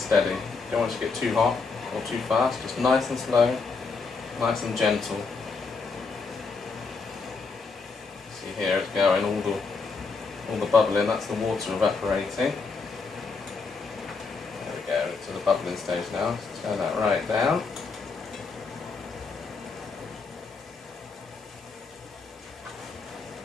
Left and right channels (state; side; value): quieter; right; 4.5 dB